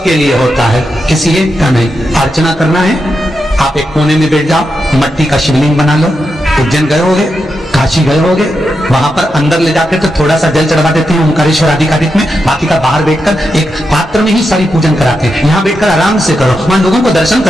लिए होता है, किसी एक का नहीं। अर्चना करना है, आप एक कोने में बैठ जाओ, मट्टी का शिवलिंग बना लो। उज्जैन गए होगे, काशी गए होगे, वहां पर अंदर ले जाकर तो थोड़ा सा जल चढ़वा देते हैं ओंकारेश्वर आधिकारिक में, बाकी का बाहर बैठकर एक पात्र में ही सारी पूजन कराते हैं। यहाँ बैठकर आराम से करो, वहां लोगों को दर्शन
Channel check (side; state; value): both; normal; correlation 0.86